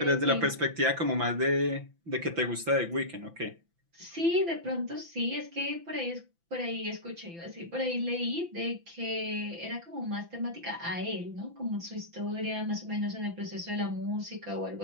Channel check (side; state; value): left; late; 5.9 ms